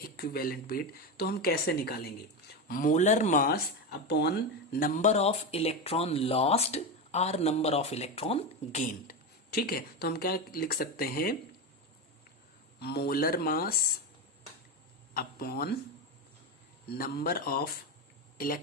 तो हम कैसे निकालेंगे? Molar mass upon number of electron lost और नंबर ऑफ इलेक्ट्रॉन गेन्ड। ठीक है, तो हम क्या लिख सकते हैं? Molar mass upon number of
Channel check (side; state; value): both; normal; correlation 0.16